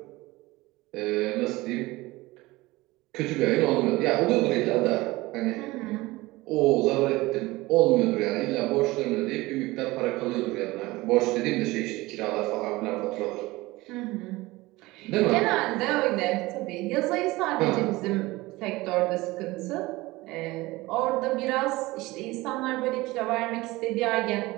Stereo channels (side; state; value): left; quieter; 20.3 dB